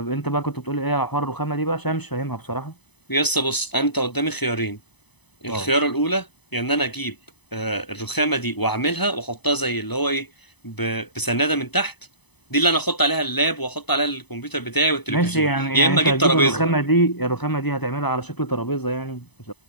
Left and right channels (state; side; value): late; right; 0.99 ms